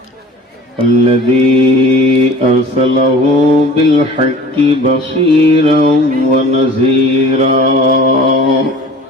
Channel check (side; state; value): both; normal; correlation 0.44